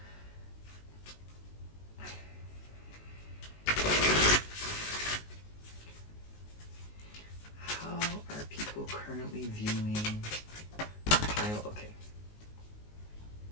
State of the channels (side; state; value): right; late; 19 ms